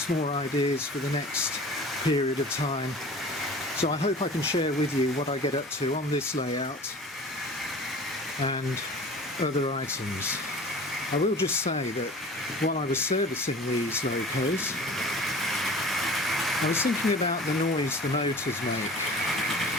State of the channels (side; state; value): both; normal; correlation 0.41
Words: more ideas for the next period of time, so I hope I can share with you what I get up to on this layout and other items. I will just say that while I was servicing these Locos, I was thinking about the noise the motors make,